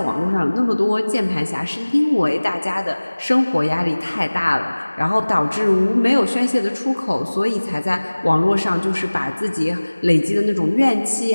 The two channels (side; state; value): both; inverted; correlation -1.00